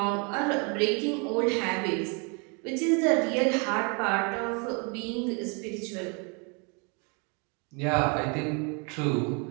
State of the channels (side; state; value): left; quieter; 34.4 dB